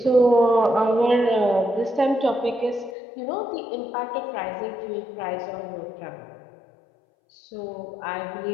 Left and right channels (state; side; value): drops out; right; at 3.0 s